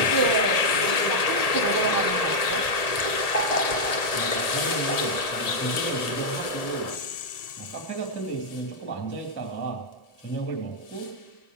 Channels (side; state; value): right; late; 1.7 ms